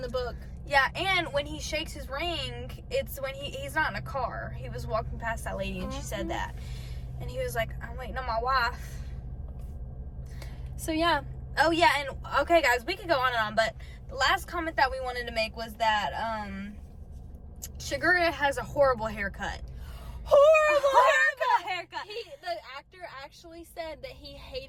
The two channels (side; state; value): both; identical; correlation 1.00